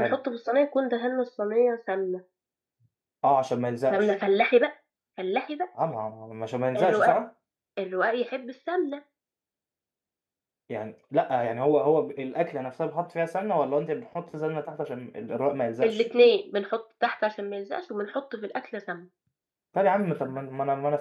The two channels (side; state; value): both; identical; correlation 1.00